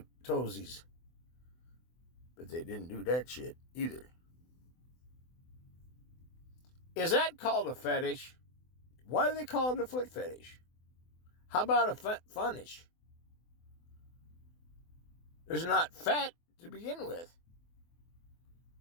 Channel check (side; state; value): right; late; 24 ms